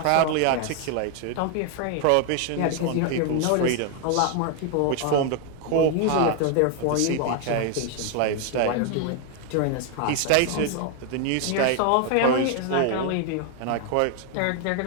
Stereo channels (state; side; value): different; both; correlation 0.01